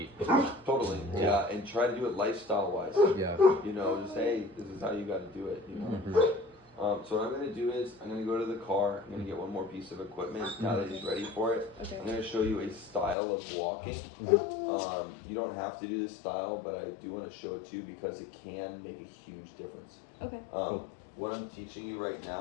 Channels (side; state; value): right; drops out; at 13.2 s